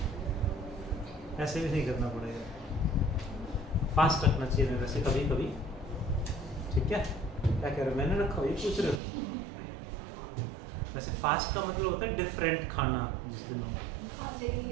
ऐसे भी नहीं करना पड़ेगा। फास्ट रखना चाहिए वैसे कभी कभी, ठीक है? क्या कह रहे हो? मैंने रखा हुआ, ये पूछ रहे हो? वैसे फास्ट का मतलब होता है डिफरेंट खाना। जिस दिन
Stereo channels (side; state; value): left; drops out; at 9.0 s